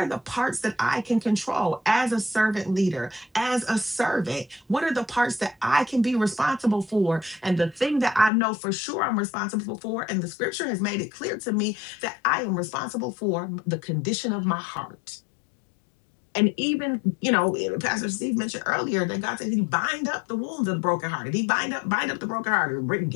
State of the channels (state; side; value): drops out; right; at 8.3 s